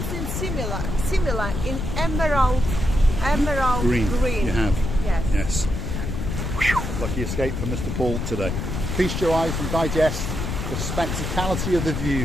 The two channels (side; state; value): left; noise; rumble, 3 dB below the sound